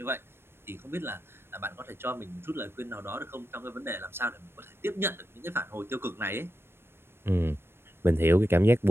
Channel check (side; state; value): left; late; 0.12 ms